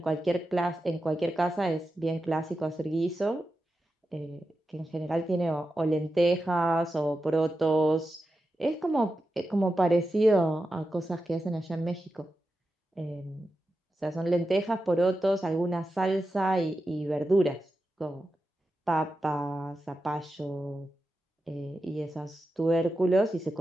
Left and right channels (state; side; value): normal; both; correlation 0.90